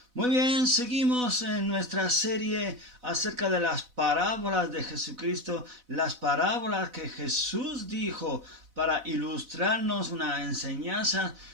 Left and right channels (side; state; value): left; late; 4.0 ms